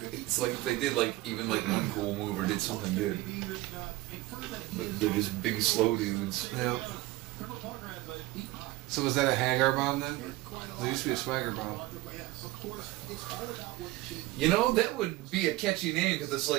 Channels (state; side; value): quieter; left; 18.7 dB